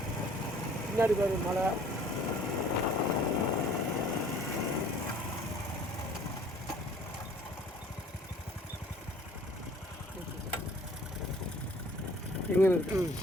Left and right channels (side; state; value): both; normal; correlation 0.54